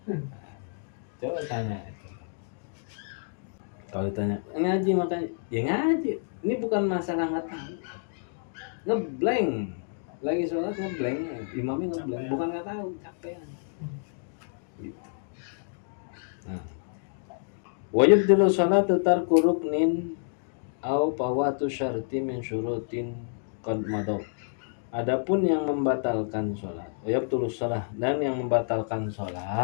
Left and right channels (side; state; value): right; silent; digital silence